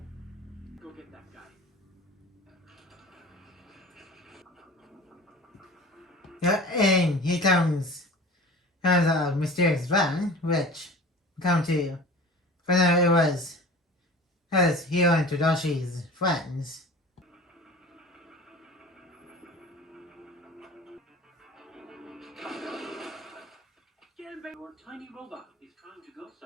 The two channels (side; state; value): both; normal; correlation 0.39